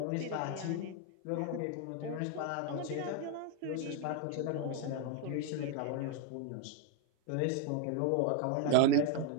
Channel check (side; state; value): both; different; correlation 0.01